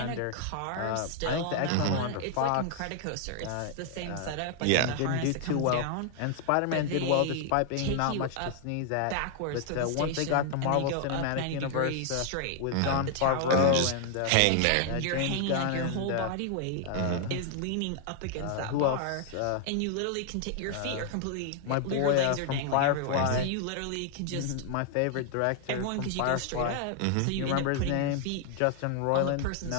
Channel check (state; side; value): different; both; correlation 0.00